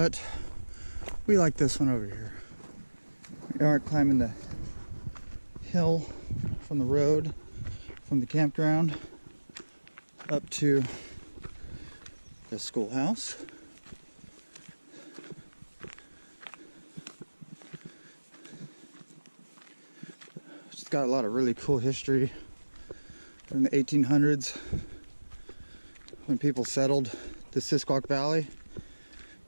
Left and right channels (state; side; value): inverted; both; correlation -1.00